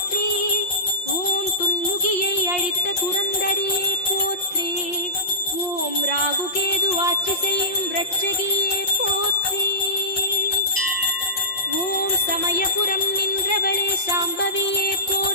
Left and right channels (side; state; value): right; late; 5.6 ms